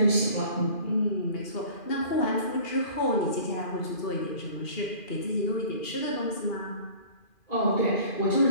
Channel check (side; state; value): right; late; 2.4 ms